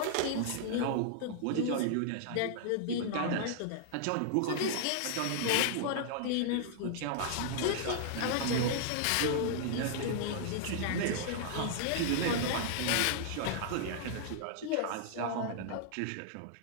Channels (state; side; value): different; both; correlation -0.01